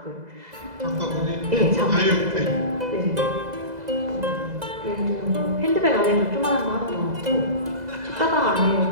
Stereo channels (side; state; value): left; late; 2.0 ms